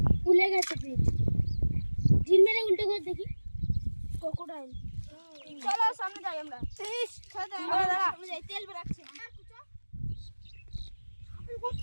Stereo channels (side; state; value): both; inverted; correlation -1.00